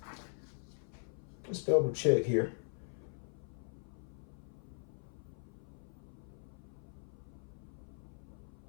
Let's double check here.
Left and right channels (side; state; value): right; silent; 51 dB below the other